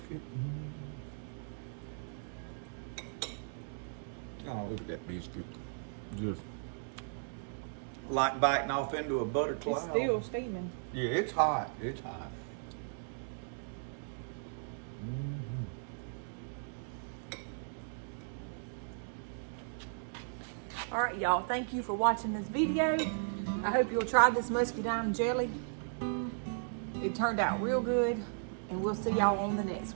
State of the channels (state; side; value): silent; left; digital silence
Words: Oh, look at that biscuit. Just like biting off into a butter cloud. It's still steaming. Yeah, it's hot. It's hot. All right, y'all. Thank you for watching this video. I hope you'll try this muscadine jelly. It turned out real good, and we'll see y'all on the next